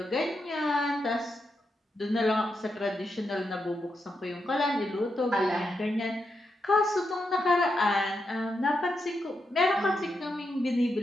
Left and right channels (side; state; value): both; normal; correlation 0.85